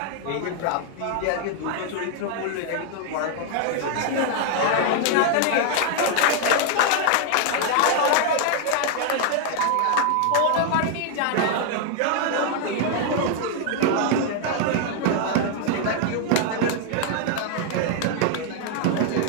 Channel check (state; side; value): different; both; correlation 0.00